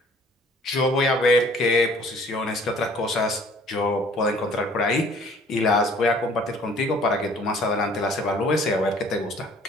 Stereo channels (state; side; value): normal; both; correlation 0.54